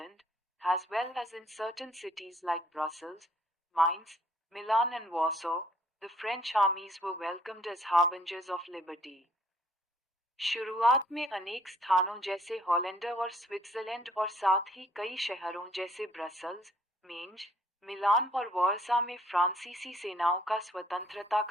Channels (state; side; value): normal; both; correlation 0.63